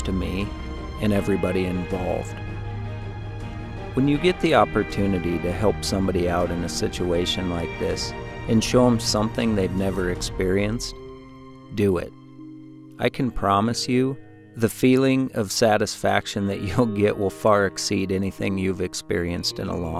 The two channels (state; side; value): identical; both; correlation 1.00